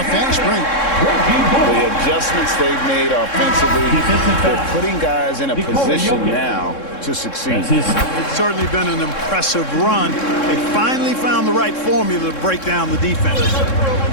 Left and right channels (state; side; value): late; right; 3.7 ms